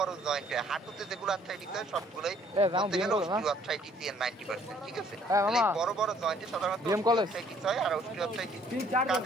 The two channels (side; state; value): both; normal; correlation 0.61